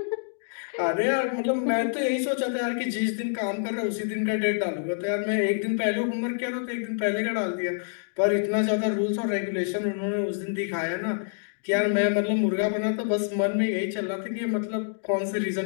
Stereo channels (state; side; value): silent; right; digital silence